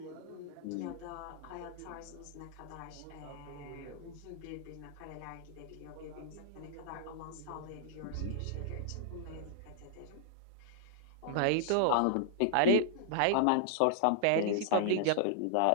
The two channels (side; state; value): both; different; correlation -0.01